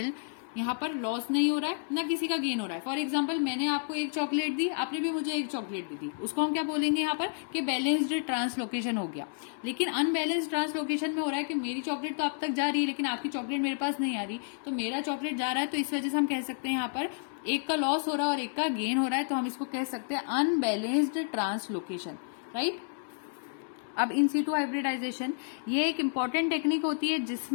यहाँ पर लॉस नहीं हो रहा है ना किसी का गेन हो रहा है। फॉर एग्जाम्पल, मैंने आपको एक चॉकलेट दी, आपने भी मुझे एक चॉकलेट दी थी, उसको हम क्या बोलेंगे यहाँ पर कि बैलेंस्ड ट्रांसलोकेशन हो गया। लेकिन अनबैलेंस्ड ट्रांसलोकेशन में हो रहा है कि मेरी चॉकलेट तो आप तक जा रही है लेकिन आपकी चॉकलेट मेरे पास नहीं आ रही, तो मेरा चॉकलेट जा रहा है, तो इस वजह से हम कह सकते हैं यहाँ पर एक का लॉस हो रहा है और एक का गेन हो रहा है, तो हम इसको कह सकते हैं अनबैलेंस्ड ट्रांसलोकेशन, राइट। अब इन सीटू हाइब्रिडाइजेशन, ये एक इंपॉर्टेंट टेक्निक होती है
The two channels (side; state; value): right; silent; digital silence